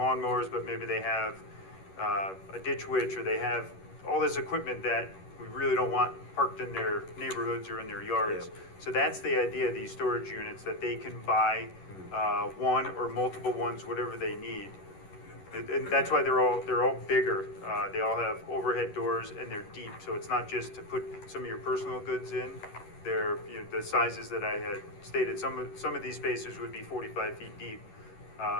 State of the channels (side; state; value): right; late; 11 ms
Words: but maybe they have a ditch witch, or they have all this equipment that we really don't want parked in their neighborhoods or in their yards. Yep. So that's the idea of these storage units, that they can buy one or multiple ones, whatever they need. And that's why they're all bigger. They all have overhead doors, and they're deep. So it's not just to put some of your personal goods in. They're the sizes that I had stated. Some of these spaces would be 45 feet deep,